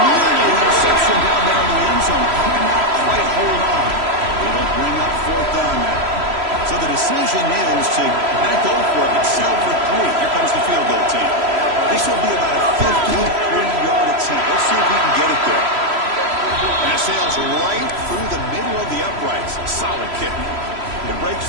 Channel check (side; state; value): left; late; 3.0 ms